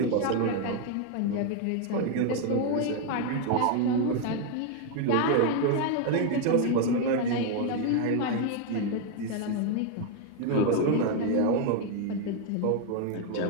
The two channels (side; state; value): both; different; correlation 0.01